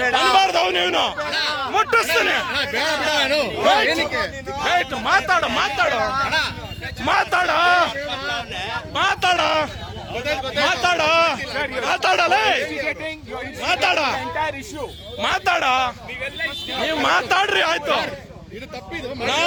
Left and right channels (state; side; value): identical; both; correlation 1.00